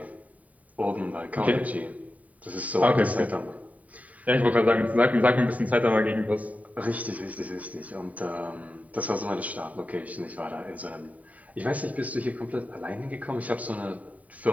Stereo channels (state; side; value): late; left; 0.070 ms